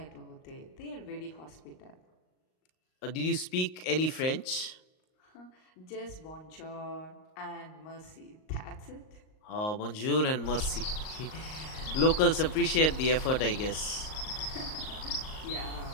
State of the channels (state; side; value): late; right; 38 ms